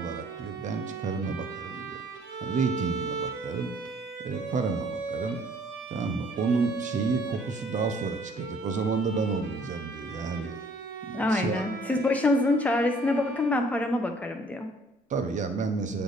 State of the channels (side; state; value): both; normal; correlation 0.58